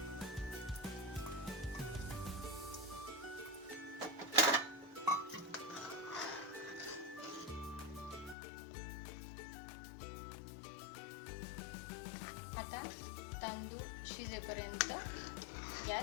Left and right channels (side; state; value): right; drops out; at 8.3 s